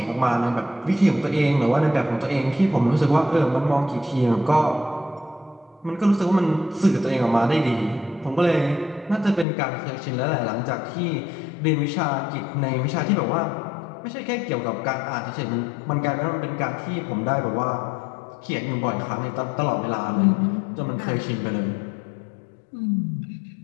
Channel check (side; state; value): right; drops out; at 9.5 s